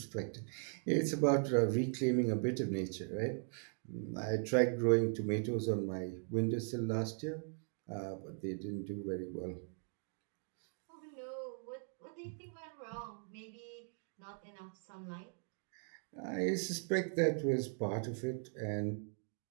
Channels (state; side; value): silent; left; 52 dB below the other